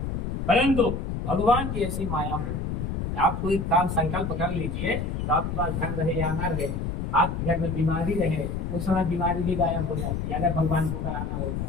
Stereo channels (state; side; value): noise; left; rumble, 2 dB below the sound